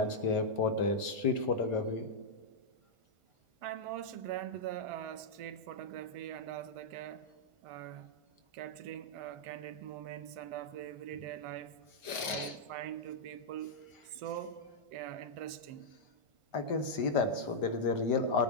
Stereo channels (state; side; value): late; left; 1.4 ms